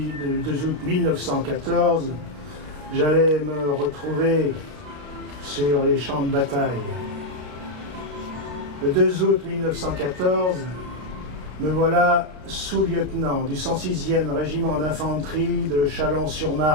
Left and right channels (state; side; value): late; left; 33 ms